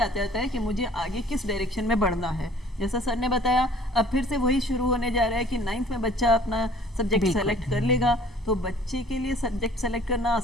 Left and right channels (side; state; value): both; normal; correlation 0.53